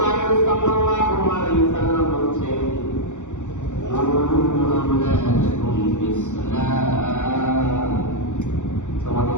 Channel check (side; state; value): right; late; 0.85 ms